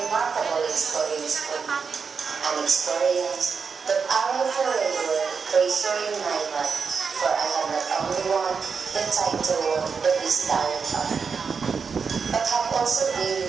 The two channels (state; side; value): quieter; left; 5.7 dB